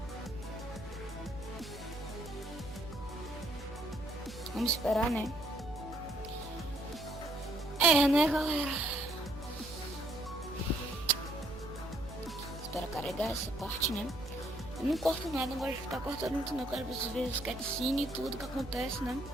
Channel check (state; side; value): noise; right; hum, 13 dB below the sound